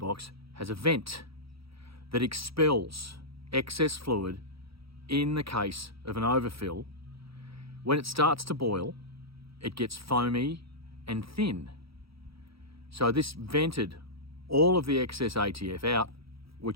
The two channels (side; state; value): left; late; 0.76 ms